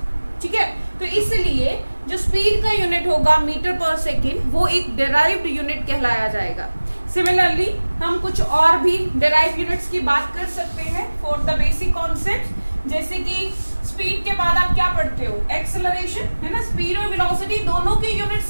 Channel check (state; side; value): inverted; both; correlation -1.00